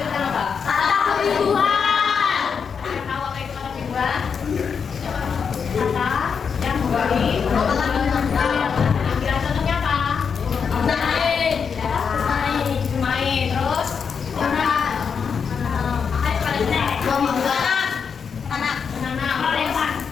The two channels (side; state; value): right; quieter; 6.3 dB